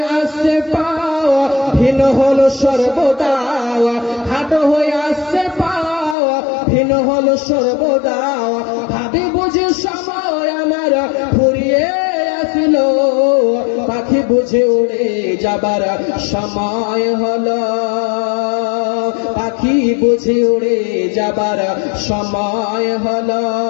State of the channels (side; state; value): right; drops out; at 6.2 s